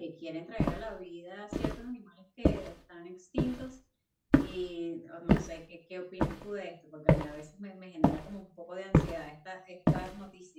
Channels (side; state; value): both; identical; correlation 1.00